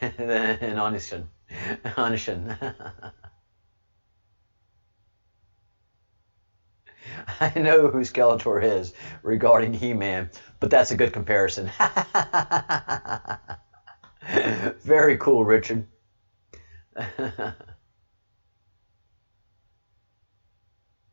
Anishin. I know who Skeletor is regarding He-Man, but that's a good comparison. Very cool, Richard.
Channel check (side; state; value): both; inverted; correlation -1.00